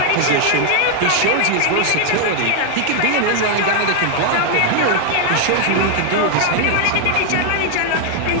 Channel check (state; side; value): different; both; correlation 0.00